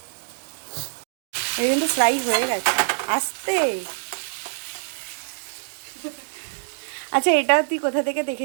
এই কিন্তু ফ্রাই হয়ে গেছে। আস্তে আচ্ছা, এটা তুই কোথা থেকে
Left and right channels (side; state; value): left; silent; digital silence